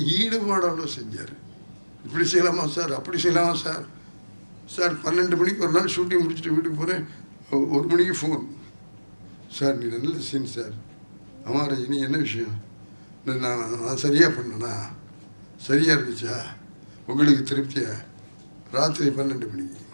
ஈடுபாடோடு செஞ்சார். இப்படி செய்யலாமா சார், அப்படி செய்யலாமா சார். சார் 12 மணிக்கு ஒரு நாள் ஷூட்டிங் முடிச்சுட்டு வீட்டுக்கு போகிறேன், 1 மணிக்கு ஃபோன். சார் நீ நல்ல சீன் சார். ஆமாம் ரஜினி, என்ன விஷயம்? நான் சரியாக பண்ணேனா? சரியாக இருந்துச்சா? உங்களுக்கு திருப்தியா? ராத்திரி 12 மணிக்கு.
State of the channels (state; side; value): inverted; both; correlation -1.00